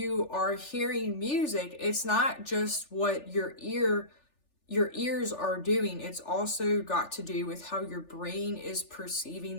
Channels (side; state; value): right; late; 3.4 ms